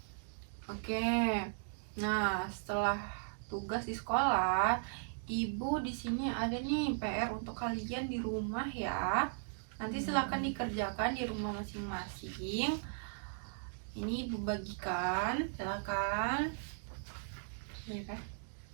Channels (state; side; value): silent; left; digital silence